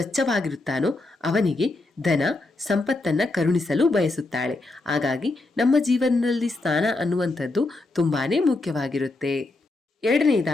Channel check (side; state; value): right; quieter; 3.1 dB